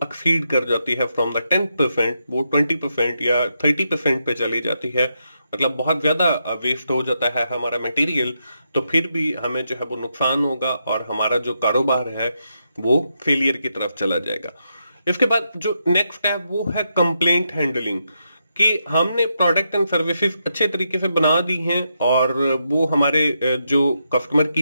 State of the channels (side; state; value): both; inverted; correlation -0.82